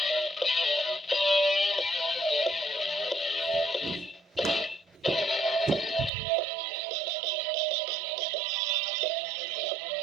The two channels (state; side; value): drops out; left; at 6.1 s